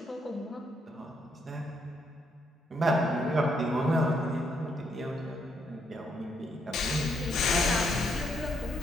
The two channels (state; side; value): normal; both; correlation 0.75